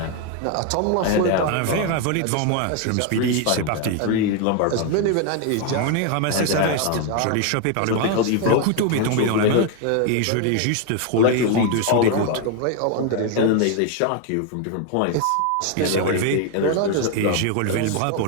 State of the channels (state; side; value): different; both; correlation 0.01